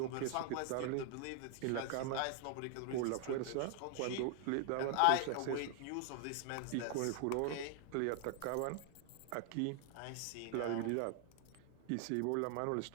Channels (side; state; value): both; different; correlation 0.00